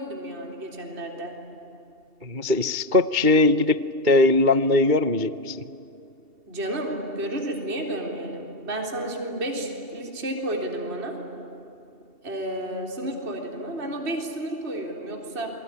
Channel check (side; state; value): left; late; 2.7 ms